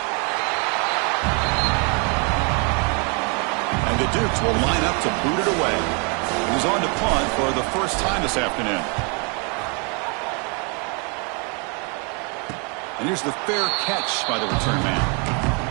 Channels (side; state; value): left; quieter; 34.6 dB